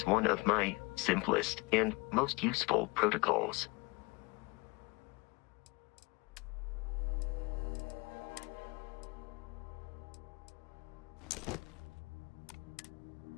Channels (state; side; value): quieter; right; 26.6 dB